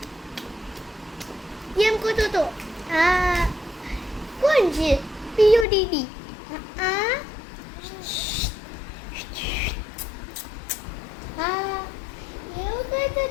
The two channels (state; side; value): drops out; right; at 5.7 s